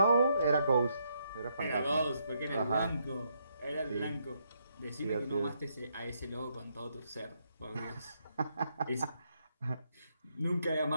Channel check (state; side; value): inverted; both; correlation -0.76